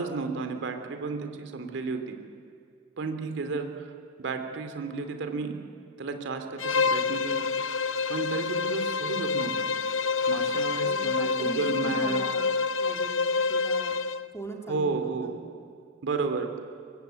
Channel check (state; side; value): normal; both; correlation -0.19